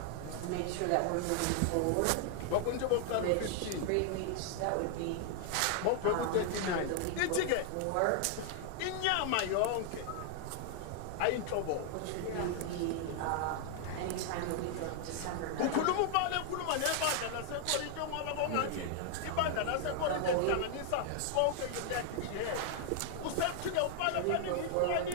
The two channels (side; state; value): both; different; correlation 0.00